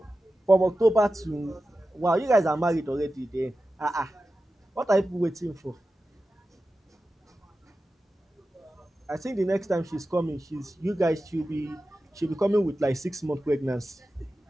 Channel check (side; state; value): both; normal; correlation 0.93